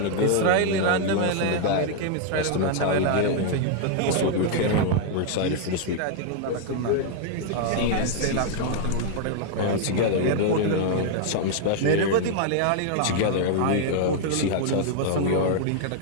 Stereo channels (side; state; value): both; different; correlation 0.00